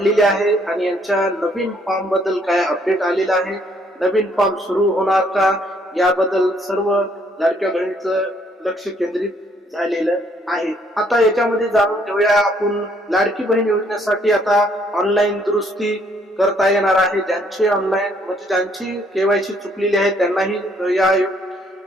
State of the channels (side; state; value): both; normal; correlation 0.67